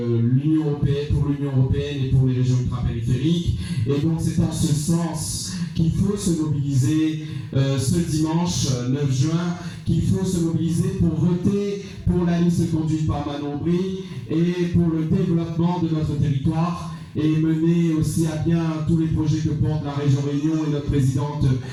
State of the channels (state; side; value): identical; both; correlation 1.00